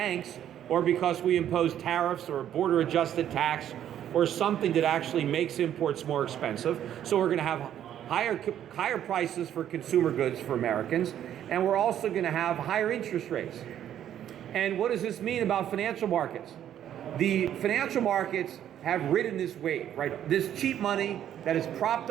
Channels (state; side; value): quieter; left; 10.6 dB